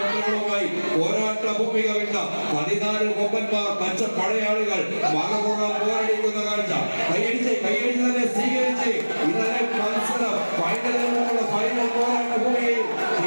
പോരാട്ട ഭൂമിക വിട്ട 14 കൊമ്പന്മാർ പച്ച പടയാളികൾ മറുപുറം പോരടിക്കുന്ന കാഴ്ച കൈയടിച്ച് തന്നെ സ്വീകരിച്ച് ഇന്നലെ മത്സരം ഫൈനലിനുള്ള ഫൈനൽ പോരാട്ട ഭൂമിയിൽ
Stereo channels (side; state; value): both; inverted; correlation -1.00